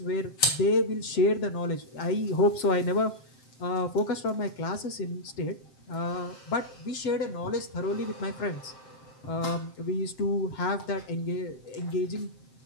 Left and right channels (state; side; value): late; right; 7.6 ms